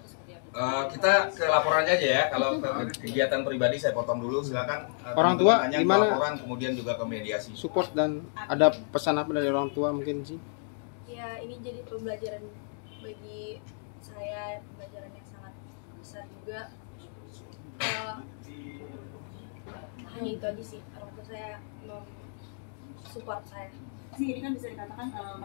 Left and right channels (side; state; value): right; silent; digital silence